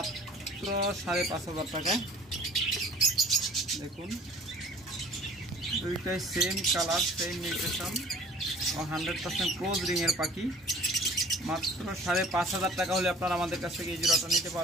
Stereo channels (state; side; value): normal; both; correlation 0.48